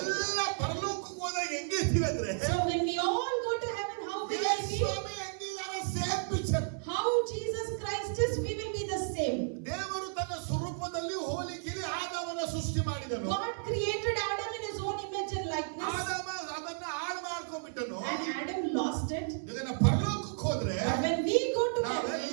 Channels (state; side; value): silent; left; 56 dB below the other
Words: ಪರಲೋಕಕ್ಕೆ ಹೋದಾಗ ಹೆಂಗಿರ್ತೀವಿ ಅಂದ್ರೆ, So when we all go to heaven, how will I be? ಸ್ವಾಮಿ ಹೆಂಗಿದ್ದಾರೆ, same picture. How Jesus Christ is, we will be the same. ದೇವರು ತನ್ನ ಸ್ವರೂಪದಲ್ಲಿ ಹೋಲಿಕೆಯಲ್ಲಿ ಆದಾಮನ ಸೃಷ್ಟಿ ಮಾಡಿದನು. God created Adam in his own image and likeness, ಆದಾಮ ಅದನ್ನ ಹಾಳು ಮಾಡ್ಕೊಂಡ್ಬಿಟ್ಟನು. and Adam lost it. ಈಗ ನಾವು ಪರಲೋಕಕ್ಕೆ ಹೋದ್ರೆ But when we go to